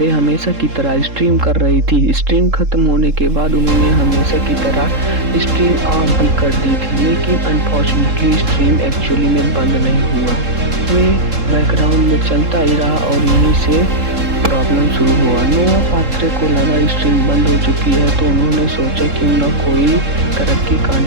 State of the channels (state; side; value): late; left; 3.7 ms